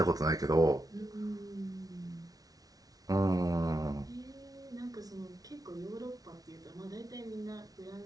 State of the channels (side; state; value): left; late; 0.18 ms